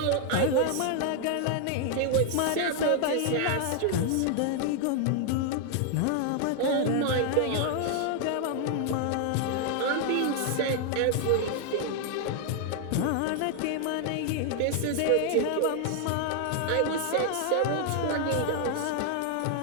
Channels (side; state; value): both; different; correlation 0.00